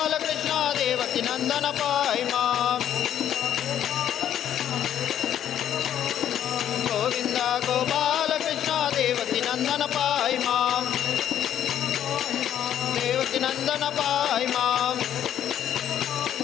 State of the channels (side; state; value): right; quieter; 10.5 dB